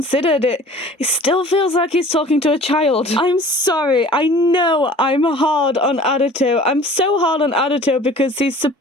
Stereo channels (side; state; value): both; normal; correlation 0.46